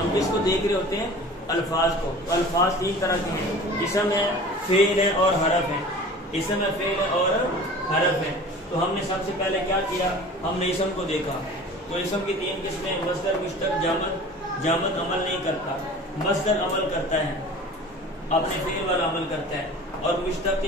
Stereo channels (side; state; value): both; normal; correlation 0.41